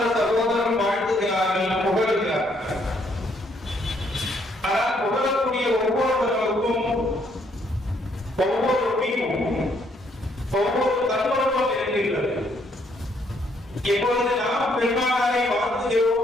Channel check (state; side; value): normal; both; correlation 0.70